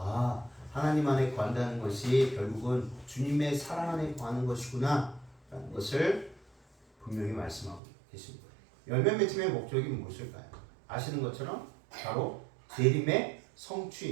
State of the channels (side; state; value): left; drops out; at 7.8 s